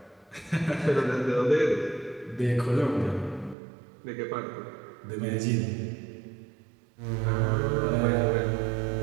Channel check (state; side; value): drops out; left; at 3.6 s